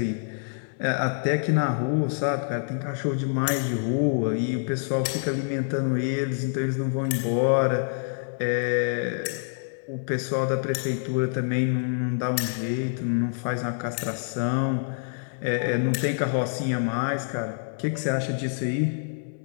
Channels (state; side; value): silent; right; digital silence